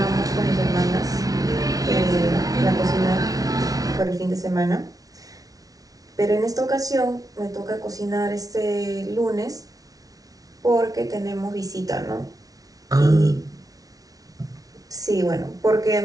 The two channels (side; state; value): left; late; 0.18 ms